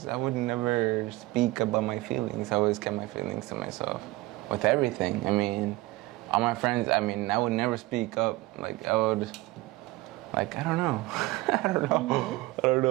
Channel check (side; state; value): left; quieter; 20.0 dB